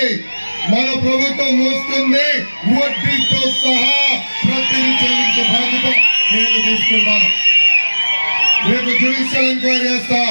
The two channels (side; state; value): both; inverted; correlation -1.00